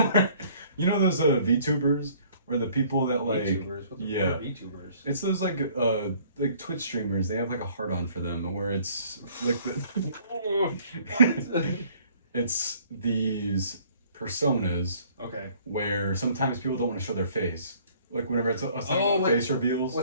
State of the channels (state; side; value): inverted; both; correlation -0.57